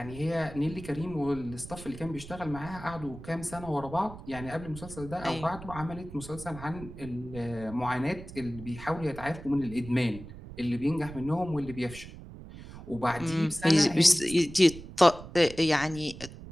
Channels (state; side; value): noise; right; rumble, 14 dB below the sound